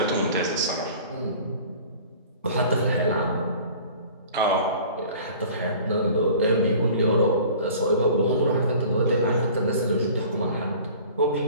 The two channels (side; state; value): both; inverted; correlation -0.45